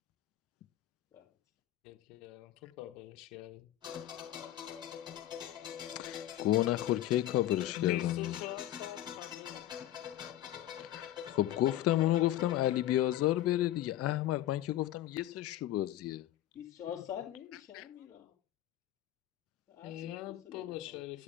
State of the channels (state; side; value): quieter; right; 13.6 dB